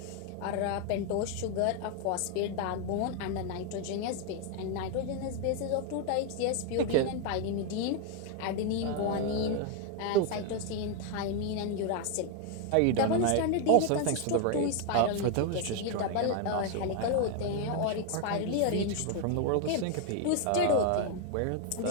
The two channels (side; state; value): both; different; correlation 0.01